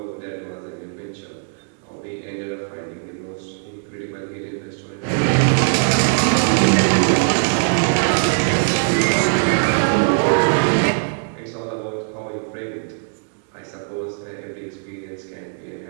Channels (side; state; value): left; silent; digital silence